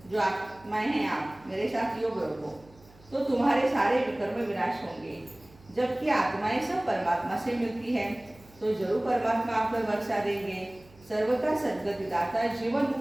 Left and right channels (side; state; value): right; noise; hum, 26 dB below the sound